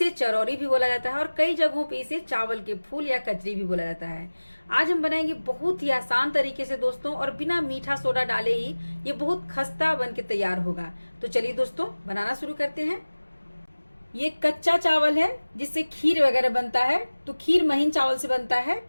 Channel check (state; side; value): inverted; both; correlation -1.00